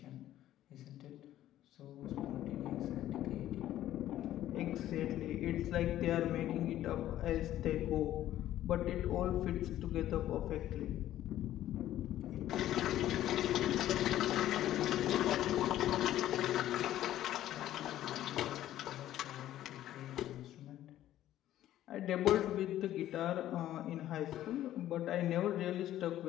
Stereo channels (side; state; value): right; quieter; 13.0 dB